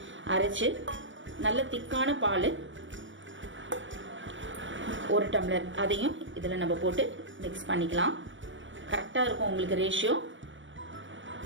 அரைச்சு நல்ல திக்கான பால் 1 டம்ளர், அதையும் இதில் நம்ம போட்டு மிக்ஸ் பண்ணிக்கலாம். கரெக்டாக இருக்கும் உங்களுக்கு ரேஷியோ.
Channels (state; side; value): late; left; 0.56 ms